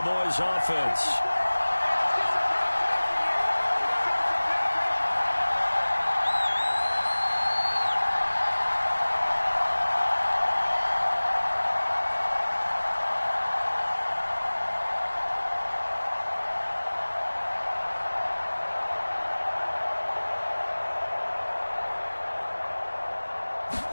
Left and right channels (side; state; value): both; inverted; correlation -1.00